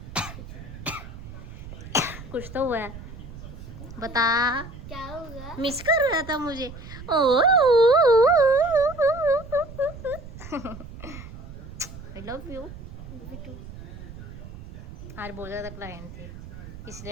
कुछ तो हुआ है, बता क्या होगा? मिस कर रहा था मुझे। ओ आई लव यू। बिटू आज बहुत ज़्यादा क्लाइंट थे, इसलिए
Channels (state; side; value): noise; right; rumble, 13 dB below the sound